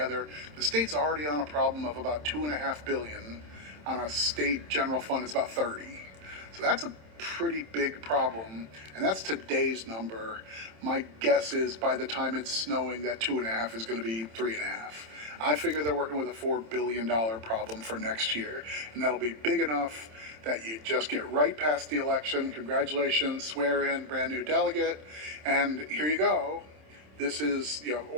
The state's already on a problem of about $2.5 billion. On a state general fund, it's about 30. So that's a pretty big problem, and that's today's number. My guess is by the time it's snowing, that 2.5 is going to be 3.5. I figure they're working with a $4 billion problem for next year, and that'll be big enough that you just get right past the election. Congratulations, swear in brand new delegate, and here you go. This is,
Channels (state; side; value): late; left; 27 ms